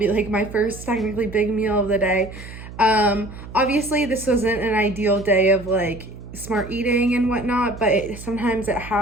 like my first technically big meal of the day. Obviously this wasn't an ideal day of like smart eating and whatnot, but sometimes it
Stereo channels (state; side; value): noise; right; hum, 14 dB below the sound